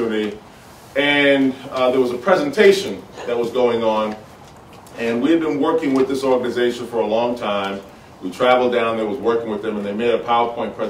And there was a presentation that was going on, and we had been working with this organization for a long time. We traveled down there, was working with them, and they made a PowerPoint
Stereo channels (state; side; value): identical; both; correlation 1.00